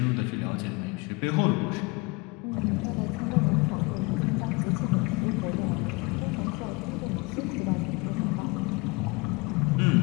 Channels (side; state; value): right; quieter; 26.3 dB